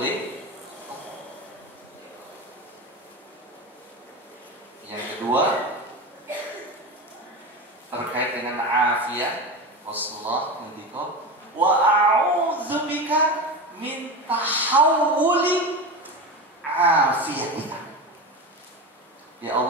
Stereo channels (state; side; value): normal; both; correlation 0.24